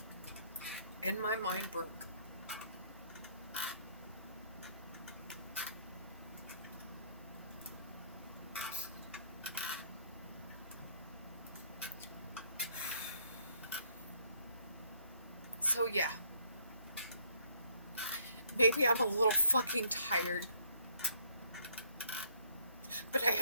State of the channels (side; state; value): both; inverted; correlation -0.67